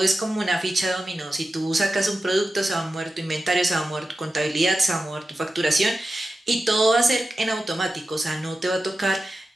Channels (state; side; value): normal; both; correlation 0.93